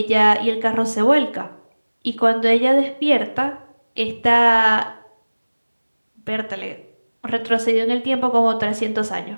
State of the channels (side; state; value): both; inverted; correlation -1.00